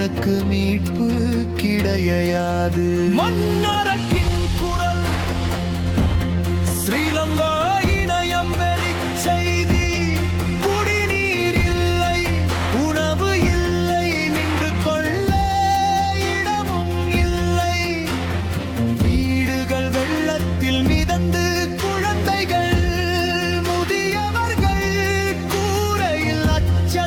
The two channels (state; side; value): identical; both; correlation 1.00